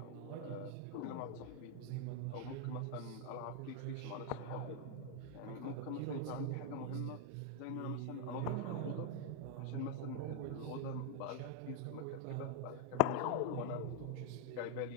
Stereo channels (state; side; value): different; both; correlation 0.00